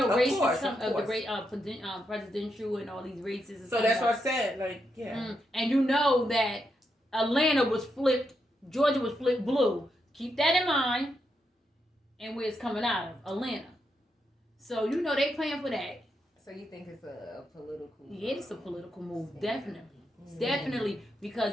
Of races, course, some of of the course. great presidential and all these races. And so stuff that's like what I said. Like, yeah. And you know that Atlanta was flipped, Georgia was flipped blue. Keep that in mind. And where it's coming out of, Atlanta. So you know they playing for that. So you think it's a political? Yeah, it's a political move, definitely. Definitely,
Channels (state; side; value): normal; both; correlation 0.82